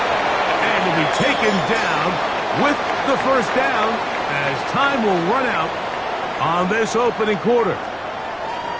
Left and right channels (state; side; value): identical; both; correlation 1.00